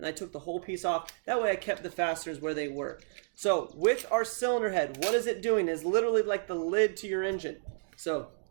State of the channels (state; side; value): silent; left; digital silence